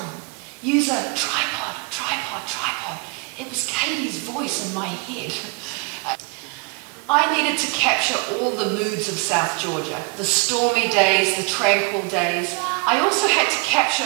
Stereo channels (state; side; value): quieter; left; 31.3 dB